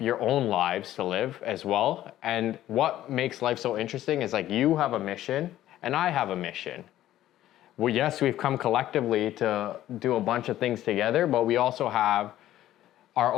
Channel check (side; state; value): right; quieter; 13.4 dB